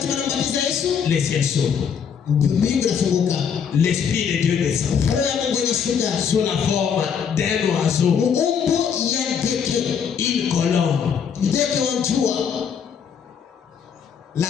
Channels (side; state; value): right; quieter; 7.2 dB